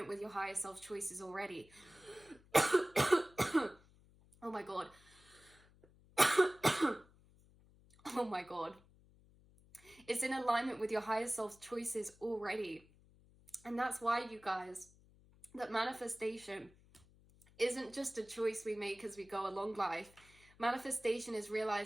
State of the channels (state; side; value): noise; left; hum, 27 dB below the sound